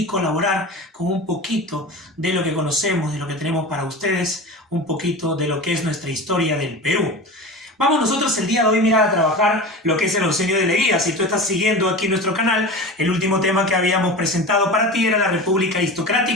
colaborar con un poquito de lo que conocemos, de lo que tenemos para ustedes, un poquito de lo que es nuestra historia del Perú. Vamos nosotros el día de hoy, mira, a trabajar lo que es el Oncenio de Leguía. Si tú estás siguiendo aquí nuestro canal, el último tema que habíamos presentado para ti era la República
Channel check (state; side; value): normal; both; correlation 0.31